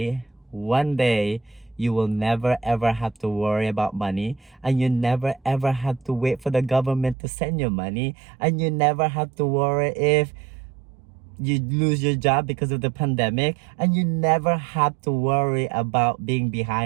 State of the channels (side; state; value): left; drops out; at 7.2 s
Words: you will never ever have to worry about money, and you never ever have to wait for the government to send you money, and you never have to worry if you lose your job because of the pandemic, and you never have to worry about being